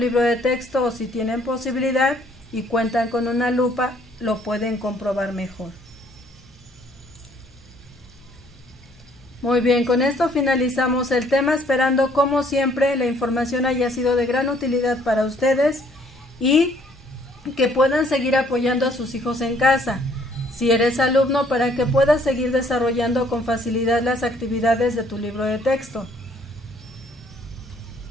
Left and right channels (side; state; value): both; normal; correlation 0.63